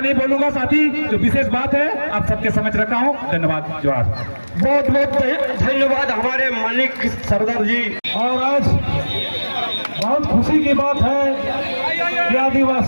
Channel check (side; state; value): both; inverted; correlation -1.00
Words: बोलूंगा साथी, जो विशेष बात है आप सबके समझ रखा हूँ। धन्यवाद, जोहार। बहुत बहुत धन्यवाद हमारे मानिक सरदार जी। और आज बहुत खुशी की बात है कि